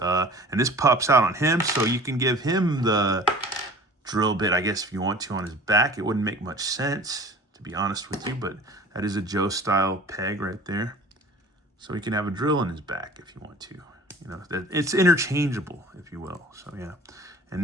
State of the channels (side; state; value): both; normal; correlation 0.44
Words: and this pops out on him, so you can give him the drill bit, I guess, if you want to, on his back. It wouldn't make much sense, to be honest with you, but that is a Joe-style peg right there. So he can have a drill in his back if you want to. You know, it's interchangeable, if you will. So yeah. And